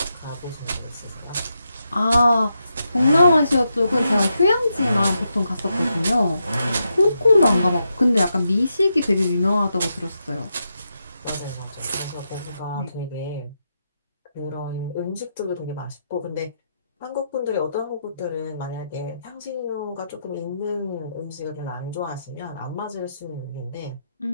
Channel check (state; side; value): inverted; both; correlation -0.84